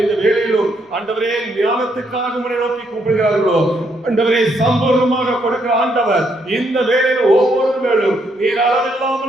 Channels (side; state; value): both; normal; correlation 0.74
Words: இந்த வேளையிலும் ஆண்டவரே ஞானத்துக்காக உம்மை நோக்கி கூப்பிடுகிறார்களோ ஆண்டவரே சம்பூர்ணமாக கொடுக்கிற ஆண்டவர் இந்த வேளையில ஒவ்வொரு வேளையும் நீர்